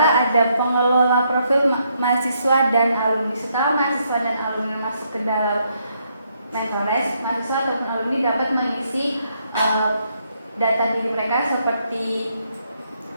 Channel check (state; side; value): inverted; both; correlation -0.75